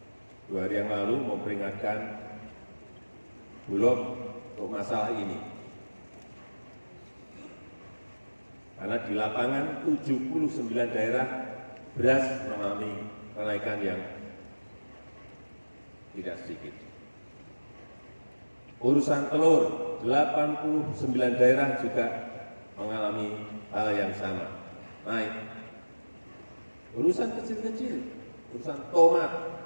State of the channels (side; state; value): both; inverted; correlation -1.00